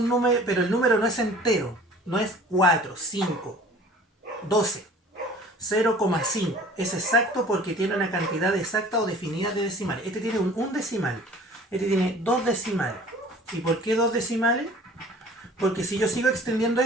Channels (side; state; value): both; normal; correlation 0.47